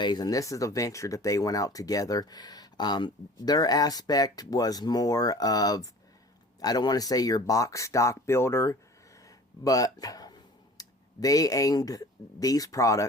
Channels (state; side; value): normal; both; correlation 0.44